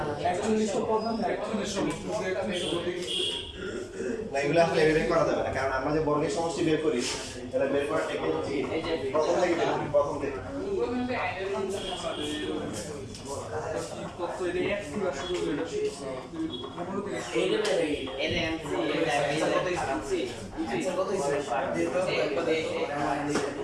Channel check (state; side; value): identical; both; correlation 1.00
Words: এগুলো আসলে এভাবে করা যাবে না কারণ আমরা যে বর্গের সমষ্টি বের করি এটা বের করার টেকনিক হচ্ছে প্রথম থেকে বের করি প্রথম থেকে না